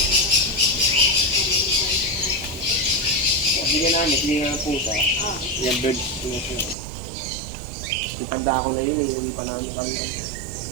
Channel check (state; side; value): drops out; left; at 6.8 s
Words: Hindi namin, hindi nga pusa. Yung bird. Itanda ko na yun, hindi pa namin kami.